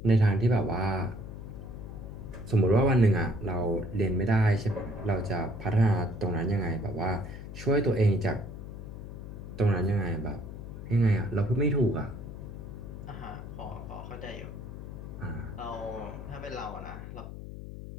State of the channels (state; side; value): noise; left; hum, 10 dB below the sound